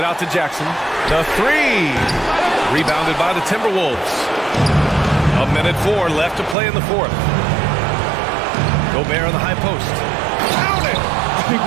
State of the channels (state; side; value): drops out; left; at 6.6 s